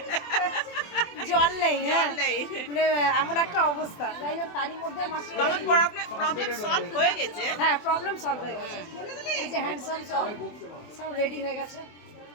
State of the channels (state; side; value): late; right; 24 ms